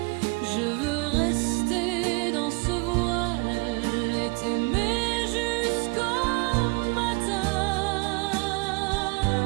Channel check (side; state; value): left; quieter; 29.5 dB